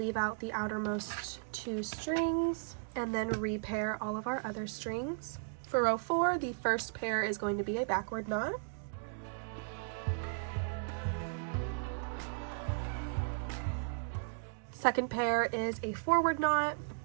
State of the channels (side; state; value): left; silent; digital silence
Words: out the outermost 2 strings and then repair all of our other strings. For row 4, the first pair is going to be a backward knot. Second pair is a forward knot.